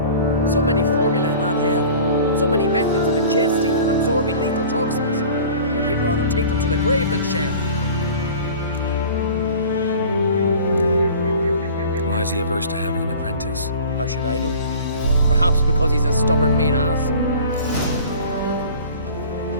So many formulae in that hell. So many methods of ingesting and absorbing lethal toxins. But he'd rather take them to the grave than share. Why is he averse to having an apprentice? How should I know? Perhaps because he's a stubborn mean ass.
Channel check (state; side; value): inverted; both; correlation -0.42